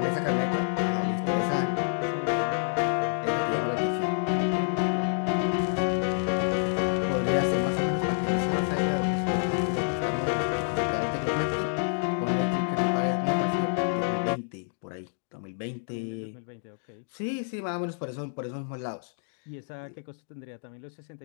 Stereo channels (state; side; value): silent; right; digital silence